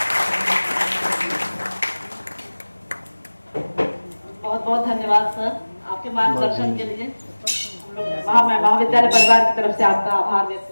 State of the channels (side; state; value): both; inverted; correlation -1.00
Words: बहुत बहुत धन्यवाद सर, आपके मार्गदर्शन के लिए। मैं महाविद्यालय परिवार की तरफ से आपका आभार